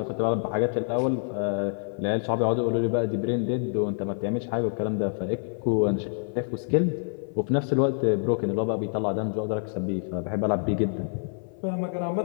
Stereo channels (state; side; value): silent; right; 56 dB below the other